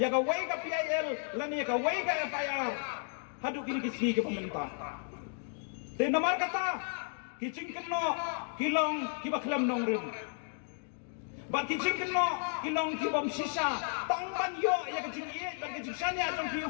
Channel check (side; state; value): right; silent; 55 dB below the other